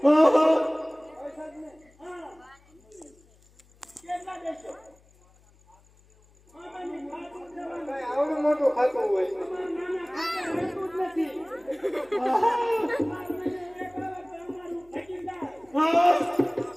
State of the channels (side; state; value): left; noise; hum, 30 dB below the sound